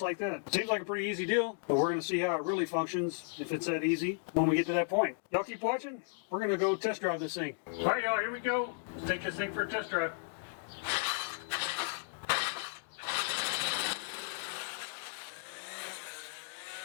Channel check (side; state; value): right; silent; digital silence